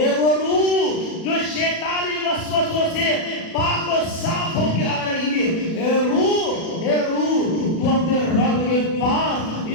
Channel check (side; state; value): right; late; 37 ms